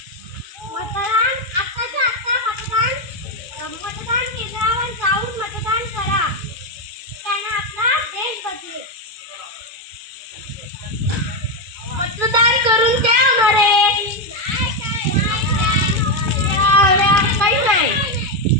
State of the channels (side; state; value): left; late; 2.7 ms